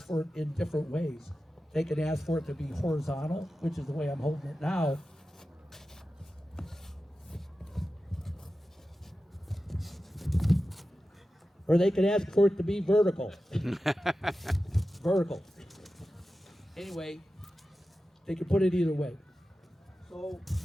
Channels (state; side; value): normal; both; correlation 0.93